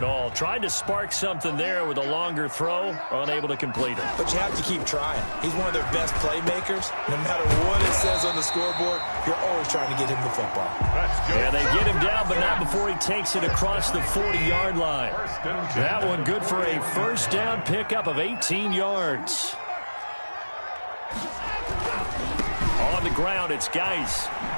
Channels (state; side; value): inverted; both; correlation -1.00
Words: all. Tried to spark something there with a longer throw, unable to complete it. But you have to keep trying. He's one of their best playmakers. No matter what it says on the scoreboard, you're always trying to get him the football. Yeah, they get him down, but not before he takes it across the 40-yard line. That one good for a 1st down pickup of 18 yards. On the ground, it's Geis.